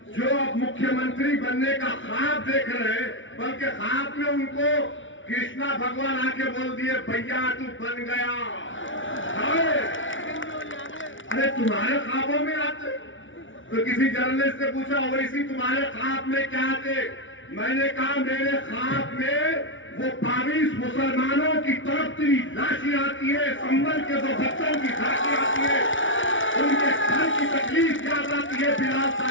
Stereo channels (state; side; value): late; right; 0.56 ms